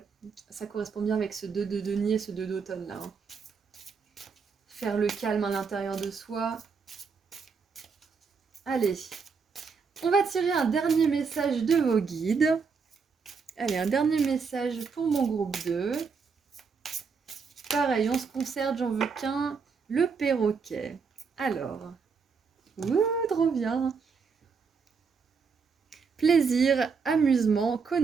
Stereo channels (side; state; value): left; quieter; 5.4 dB